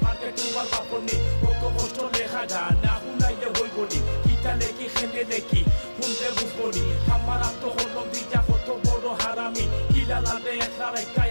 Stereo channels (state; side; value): inverted; both; correlation -1.00